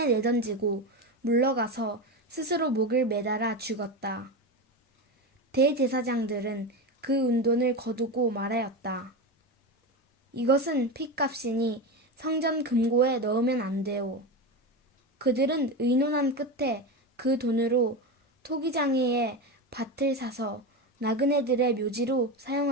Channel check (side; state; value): both; normal; correlation 0.19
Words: 내던지고 물러가서 스스로 목을 매달아 죽었다. 대제사장들은 그 은돈을 거두고 말하였다. 이것은 핏값이니 성전 금고에 넣으면 안 돼요. 그들은 의논한 끝에 그 돈으로 토기장이의 밭을 사서 나그네들의 묘지로